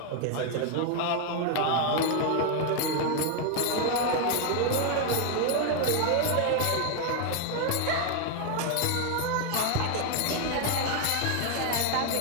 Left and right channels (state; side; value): different; both; correlation 0.01